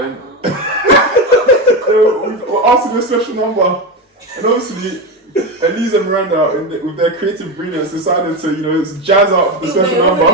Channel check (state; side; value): normal; both; correlation 0.16